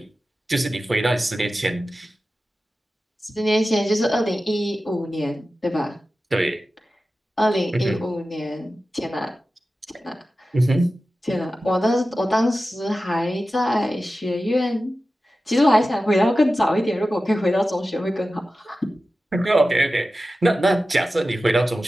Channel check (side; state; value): both; normal; correlation 0.94